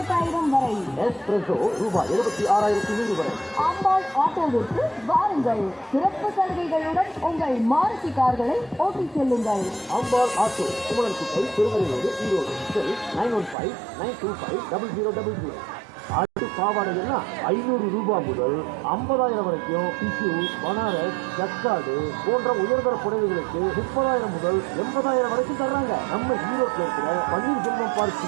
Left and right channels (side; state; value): left; drops out; at 13.6 s